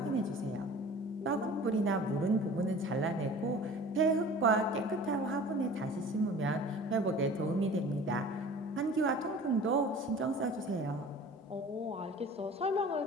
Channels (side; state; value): both; normal; correlation 0.43